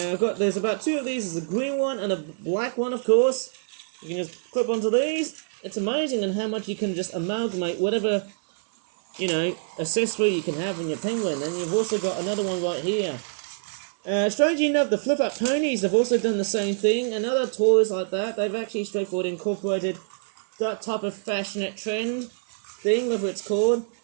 about 2 of these. There's a green one and a black one, of course. You can just clip onto these. It's amazing in how much you can just amalgamate whatever, accessory you can have in your penguin. And you've also got another one right here. Strangely enough, the flip-up ponies have also done the same thing. And other toys like that, they've actually straightforward incorporated that type of fashionette trend thing, whatever it's called.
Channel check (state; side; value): silent; left; 61 dB below the other